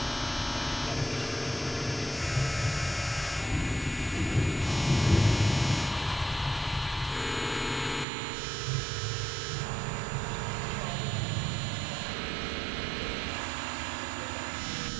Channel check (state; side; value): drops out; left; at 8.1 s